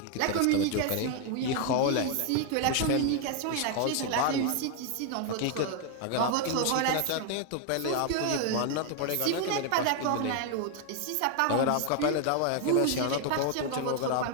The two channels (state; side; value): different; both; correlation 0.01